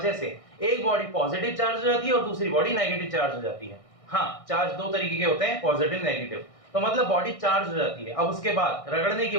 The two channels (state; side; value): late; right; 1.6 ms